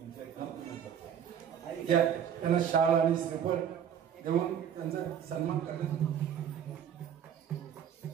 त्यांना शाल आणि श्रीफळ देऊन त्यांचा सन्मान करण्यात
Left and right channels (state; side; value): quieter; left; 8.9 dB